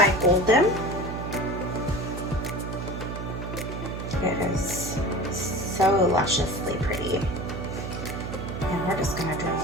Golden. It is so lusciously pretty. And we're just gonna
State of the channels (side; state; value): right; noise; hum, 6 dB below the sound